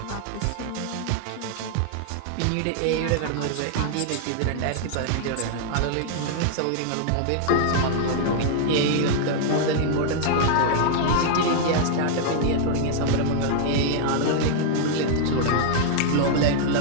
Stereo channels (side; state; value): both; different; correlation 0.00